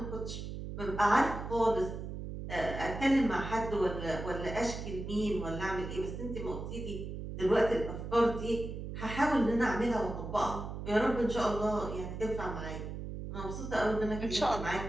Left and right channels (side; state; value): right; noise; hum, 7 dB below the sound